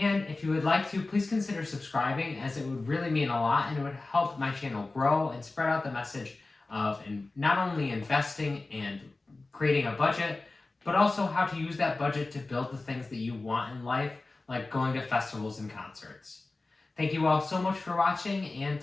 if you would like to, please consider subscribing as it would really mean a lot and it would help my channel grow and spread out the message of not only investing and creating a budget, but also how to use that budget to build the things that you want in life, like going to festivals and concerts. Thank you all so much for watching and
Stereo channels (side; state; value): right; quieter; 3.3 dB